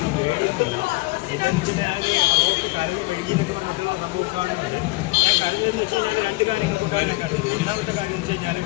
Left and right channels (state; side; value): quieter; right; 23.3 dB